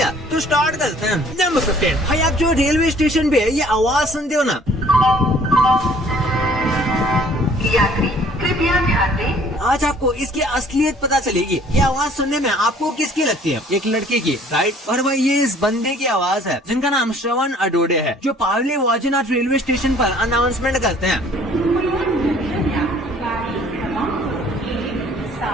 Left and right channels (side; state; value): both; normal; correlation 0.56